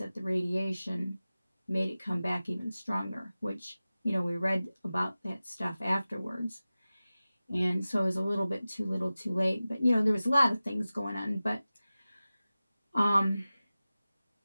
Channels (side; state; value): both; inverted; correlation -0.96